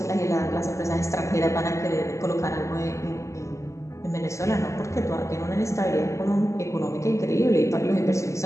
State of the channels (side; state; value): right; late; 0.14 ms